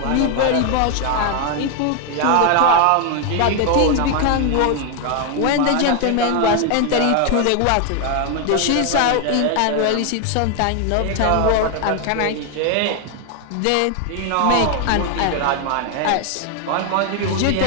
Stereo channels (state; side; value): different; both; correlation 0.01